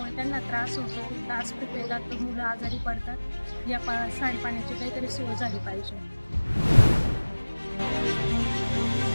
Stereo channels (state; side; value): inverted; both; correlation -1.00